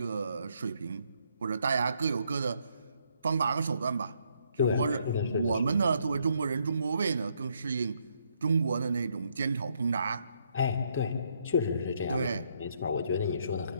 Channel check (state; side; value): inverted; both; correlation -0.73